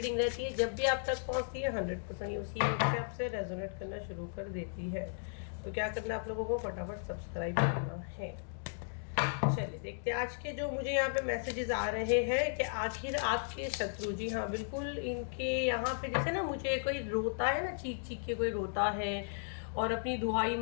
रहती है। जब भी आप तक पहुँचती है 100% उसी वक्त से आपसे रेजोनेट करना शुरू कर देती है। तो क्या करना आप लोगों को, फटाफट सब्सक्राइब करना है। चलिए देखते हैं आज के जो मुझे यहाँ पे मैसेजेस आ रहे हैं कि आखिर आपके शत्रु, जी हाँ बिल्कुल, इनके यहाँ पे जैसे ना मुझे कोई रोता है ना, चीख चीख के कोई रोता है और अपनी दुहाई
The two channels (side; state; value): right; silent; digital silence